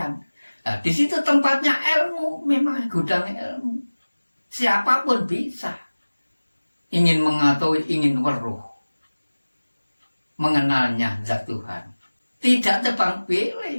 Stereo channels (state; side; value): inverted; both; correlation -1.00